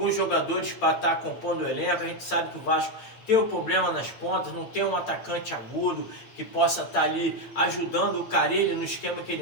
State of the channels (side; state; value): right; late; 8.8 ms